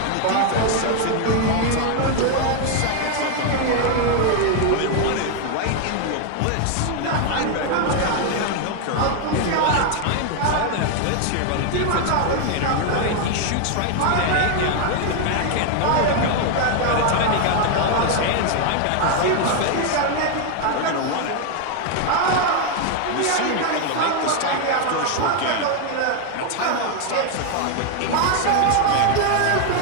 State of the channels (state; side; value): different; both; correlation 0.01